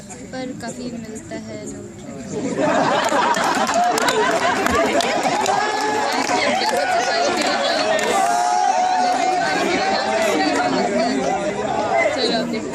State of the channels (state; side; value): identical; both; correlation 1.00